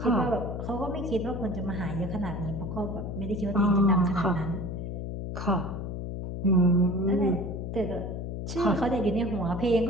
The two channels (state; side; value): noise; left; hum, 5 dB below the sound